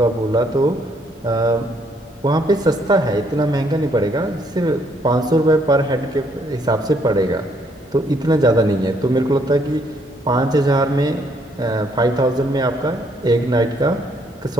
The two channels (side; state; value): both; normal; correlation 0.69